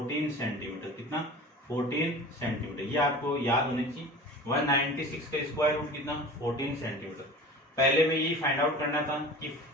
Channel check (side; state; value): both; normal; correlation 0.37